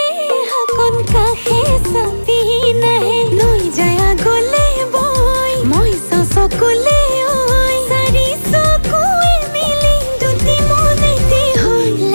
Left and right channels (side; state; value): both; inverted; correlation -1.00